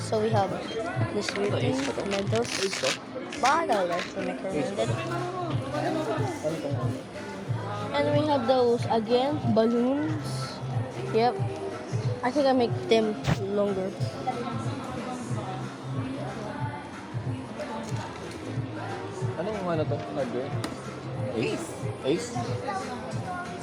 So we have this weird thing for tomatoes. Bottle, that's recommended. And we have those again, balloons. Yep. I think I make them longer. Ano yung ano to? Hardware? Ace?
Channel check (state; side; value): identical; both; correlation 1.00